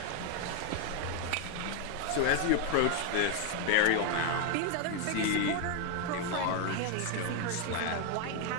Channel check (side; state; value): both; different; correlation 0.01